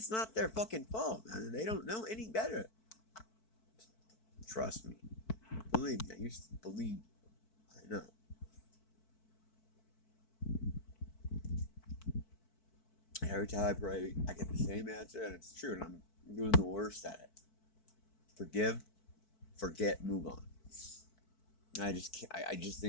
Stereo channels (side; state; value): right; late; 4.5 ms